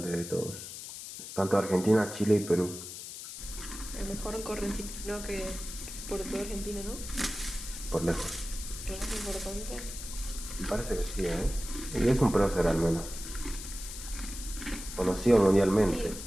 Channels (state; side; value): noise; left; hiss, 10 dB below the sound